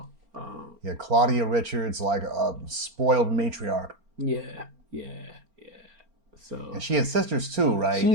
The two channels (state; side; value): late; left; 4.4 ms